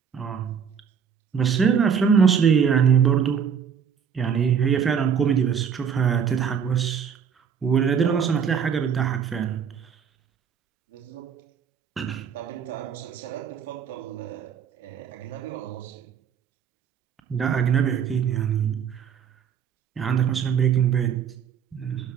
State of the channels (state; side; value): quieter; left; 7.3 dB